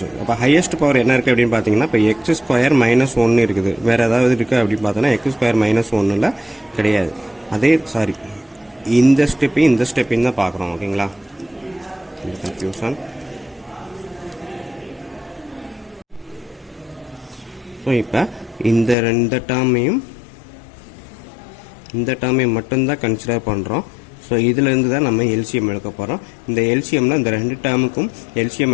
அப்போ ஹையஸ்ட் பவர் என்ன இருக்குது அப்படின்னு பார்த்தீங்கன்னா, இப்போ எக்ஸ் ஸ்கொயர் மைனஸ் 1 இருக்குது. வேறு ஏதாவது இருக்குது அப்படின்னு பார்த்தோன்னா எக்ஸ் ஸ்கொயர் மைனஸ் 1 கிடையாது. இந்த ஸ்டெப்பையும் தான் பார்க்குறோம். ஓகேங்களா? கன்ஃபியூஷன். ஸோ இப்போ இந்த டேர்மையும் மட்டும்தான் கன்சிடர் பண்ணுறோம். ஸோ இதிலேருந்து தான் நம்ம எல்சிஎம் எடுக்க போகிறோம். இந்த எல்சிஎம்ல இந்த 2 டேர்முக்கும் எல்சிஎம்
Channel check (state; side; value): drops out; right; at 18.9 s